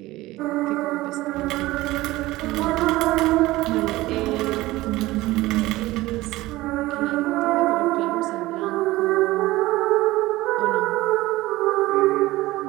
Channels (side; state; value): left; quieter; 18.3 dB